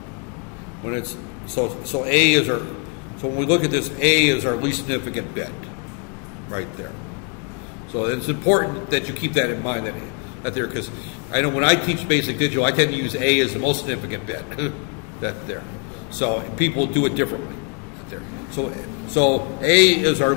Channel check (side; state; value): right; quieter; 37.8 dB